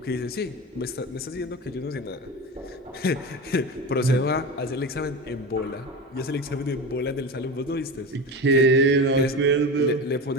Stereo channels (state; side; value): normal; both; correlation 0.25